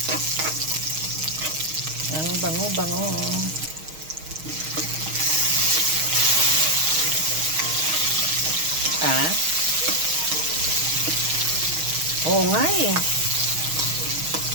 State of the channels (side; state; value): left; late; 6.4 ms